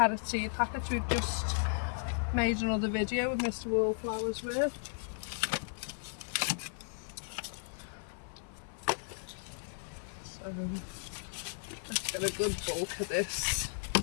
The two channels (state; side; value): silent; right; 54 dB below the other